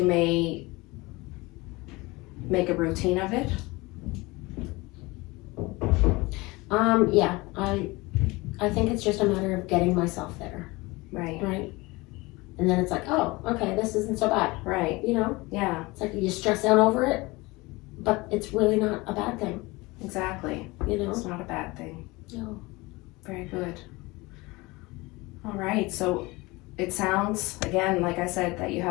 may make a routine of it? Yeah, I think it's just a matter of getting myself there, Right. right? And then it's like, oh, okay, this isn't so bad, Right. you know? Yeah. It's like you stress out over it, but it's really not a bad thing, Exactly. you know? It's not a bad thing. No. Very good. All right. So it sounds, again, like I said, that you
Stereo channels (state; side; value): quieter; right; 22.9 dB